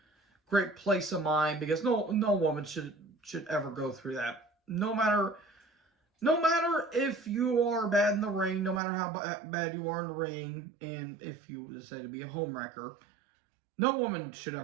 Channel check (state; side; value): drops out; left; at 8.8 s